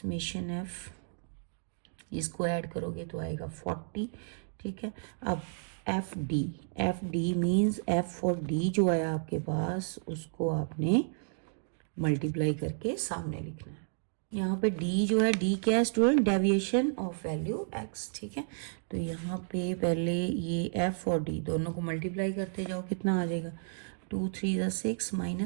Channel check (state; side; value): silent; left; digital silence